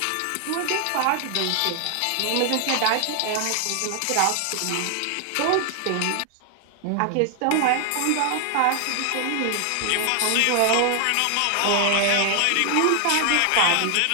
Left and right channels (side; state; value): both; different; correlation 0.00